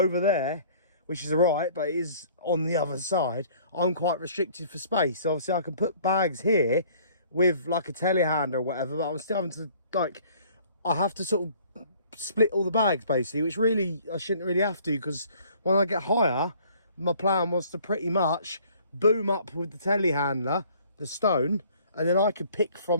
there, which is alright, but it is on the other side, I'm quite restricted for space. So obviously I can put bags here with like a telehandler or whatever, but I'm still having to like, I have to sort of split all the bags basically, which really I shouldn't really have to, because when I get higher, my plan was to pretty much boom up with the telehandler the stone, and then I could pick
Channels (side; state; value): both; inverted; correlation -0.56